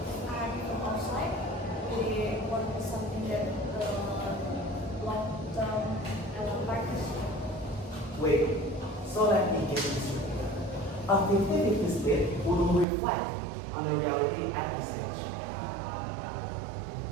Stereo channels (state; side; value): drops out; left; at 12.9 s